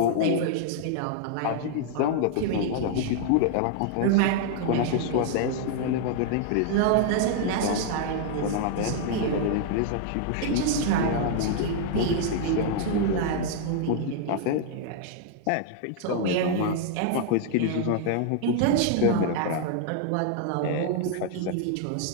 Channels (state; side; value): different; both; correlation 0.00